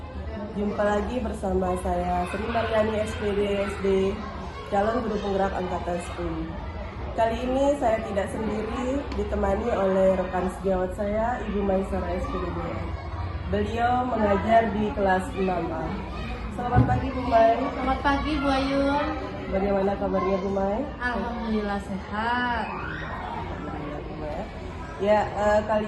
Jumpa lagi bersama saya Sri Mariani SPD SD, calon guru penggerak angkatan 10. Kali ini saya tidak sendiri, ditemani oleh rekan sejawat saya, Ibu Maisara SPD. Beliau mengajar di kelas 6A. Selamat pagi Bu Mai. Selamat pagi Bu Ayun. Bagaimana kabarnya Bu Mai? Alhamdulillah sehat. Ya,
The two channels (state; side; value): identical; both; correlation 1.00